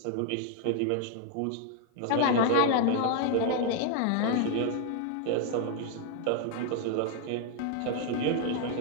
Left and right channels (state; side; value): different; both; correlation 0.00